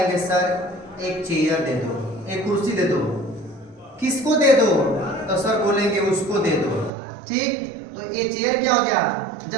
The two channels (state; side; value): drops out; left; at 6.9 s